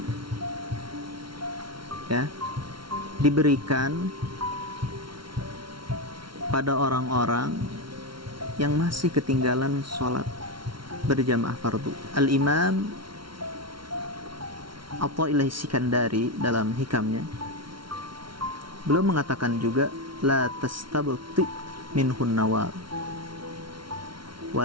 ya diberikan pada orang-orang yang masih ketinggalan sholat berjamaah fardu. Al-Imam Athaillah Sikandari dalam hikamnya beliau mengatakan juga la tastabti minhun nawal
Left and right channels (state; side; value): late; left; 0.74 ms